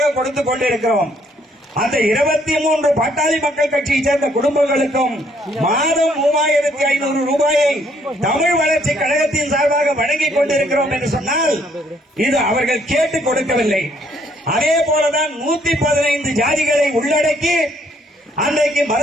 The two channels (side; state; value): both; normal; correlation 0.67